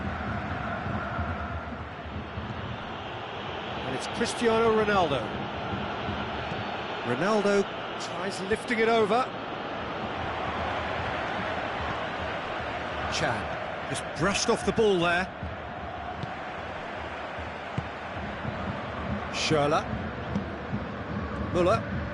And it's Cristiano Ronaldo. Ronaldo tries lifting it over. Chan just brushed off the ball there. Schürrle. Müller.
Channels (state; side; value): identical; both; correlation 1.00